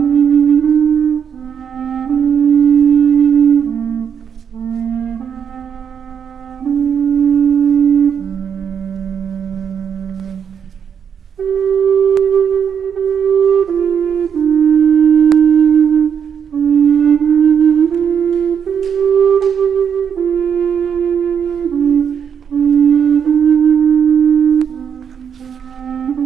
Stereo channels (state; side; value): quieter; left; 7.6 dB